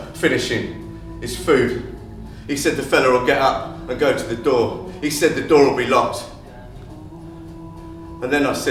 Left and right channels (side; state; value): both; identical; correlation 1.00